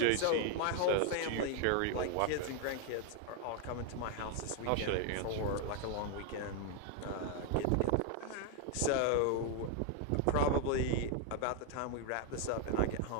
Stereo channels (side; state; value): both; different; correlation 0.01